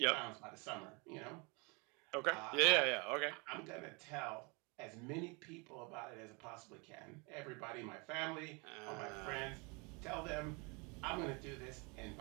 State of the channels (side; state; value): left; quieter; 30.1 dB